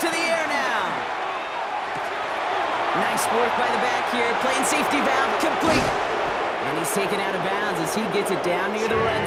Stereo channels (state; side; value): identical; both; correlation 1.00